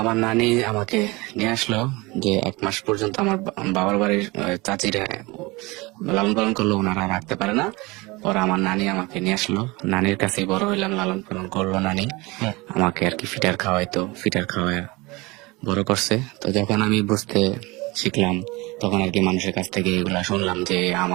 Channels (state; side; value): quieter; left; 23.8 dB